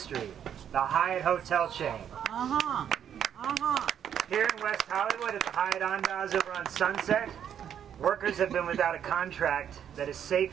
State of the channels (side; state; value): left; quieter; 9.1 dB